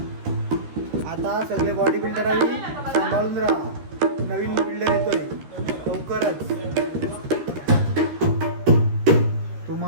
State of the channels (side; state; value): left; late; 13 ms